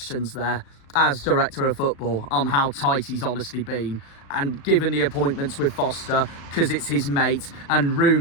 there as Director of Football, on how tight he's honestly been. And given the appointments with Foster, because it's his mate, and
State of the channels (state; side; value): late; right; 36 ms